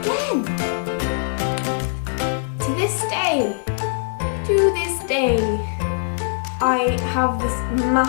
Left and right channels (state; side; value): silent; right; digital silence